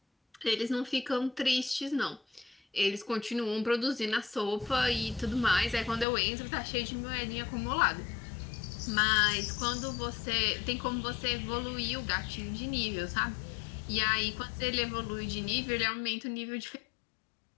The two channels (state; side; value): drops out; right; at 6.1 s